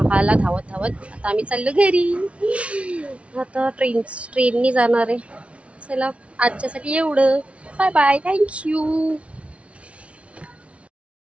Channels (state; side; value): late; left; 0.062 ms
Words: हाला धावत आता आम्ही चाललो घरी. आता ट्रेननी जाणार आहे. चला आजच्यासाठी एवढं. Bye bye, thank you.